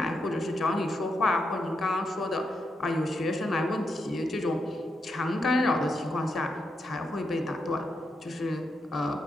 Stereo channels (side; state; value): both; normal; correlation 0.83